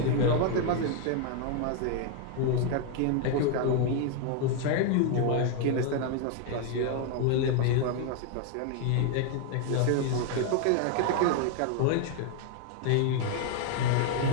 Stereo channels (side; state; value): both; different; correlation 0.00